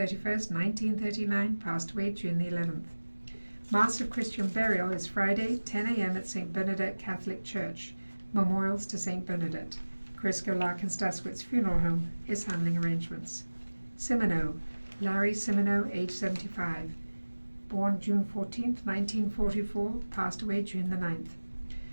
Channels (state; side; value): inverted; both; correlation -1.00